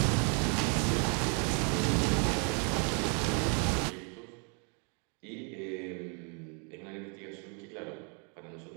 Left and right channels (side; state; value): left; quieter; 37.8 dB